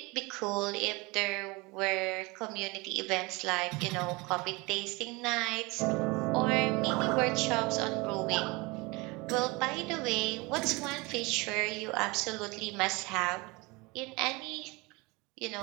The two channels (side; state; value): left; quieter; 25.2 dB